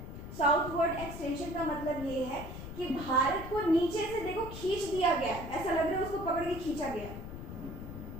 साउथवर्ड एक्सटेंशन का मतलब ये है कि भारत को नीचे से देखो खींच दिया गया, ऐसा लग रहा है उसको पकड़ के खींचा गया,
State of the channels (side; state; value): left; noise; rumble, 10 dB below the sound